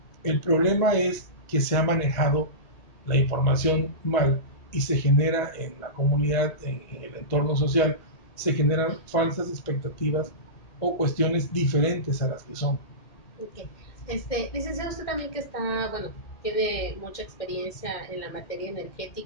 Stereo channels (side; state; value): right; late; 1.8 ms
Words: El problema es que se ha manejado la información mal y se genera en la comunidad, en el entorno social, se generan falsas expectativas o cuestiones diferentes a las que son. Okay. Licenciado, usted también que está, bueno, tiene mucha experiencia en la materia